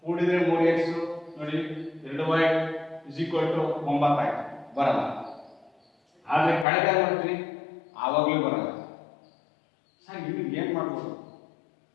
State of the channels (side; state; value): right; drops out; at 6.7 s